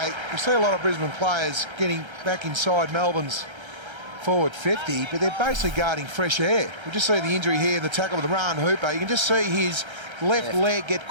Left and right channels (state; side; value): late; left; 1.3 ms